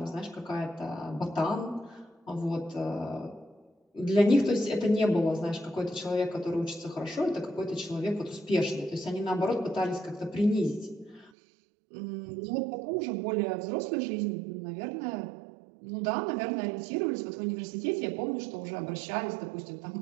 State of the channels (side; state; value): left; drops out; at 11.3 s